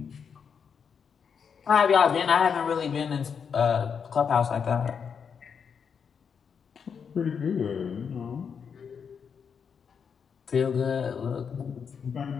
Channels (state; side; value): quieter; right; 6.7 dB